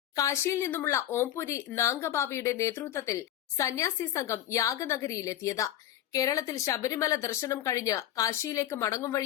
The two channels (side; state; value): right; quieter; 12.1 dB